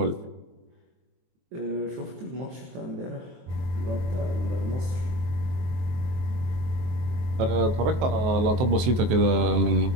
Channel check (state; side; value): late; left; 23 ms